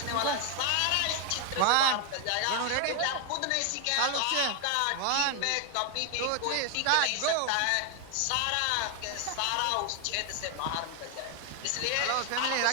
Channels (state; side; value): different; both; correlation 0.00